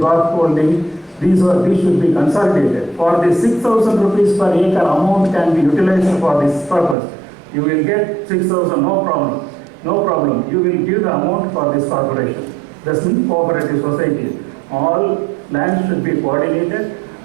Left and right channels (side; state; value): left; drops out; at 7.0 s